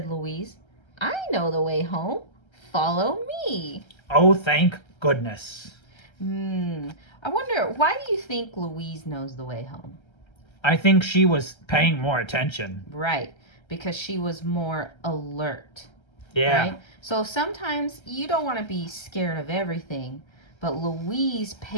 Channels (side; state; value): right; late; 1.3 ms